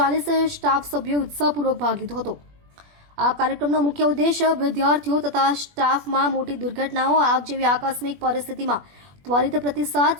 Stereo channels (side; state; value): left; late; 21 ms